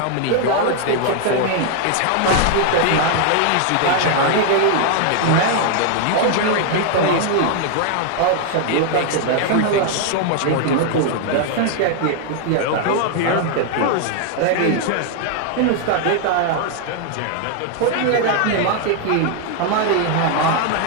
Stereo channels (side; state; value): both; different; correlation 0.00